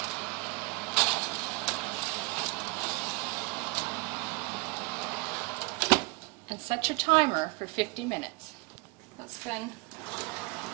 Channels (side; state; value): left; quieter; 27.1 dB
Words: And set your timer for 50 minutes. Let's spend